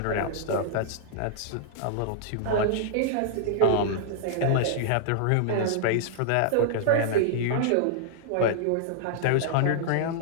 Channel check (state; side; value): different; both; correlation -0.01